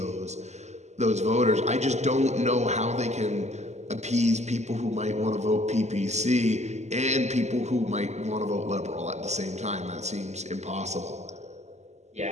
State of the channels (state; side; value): late; left; 0.33 ms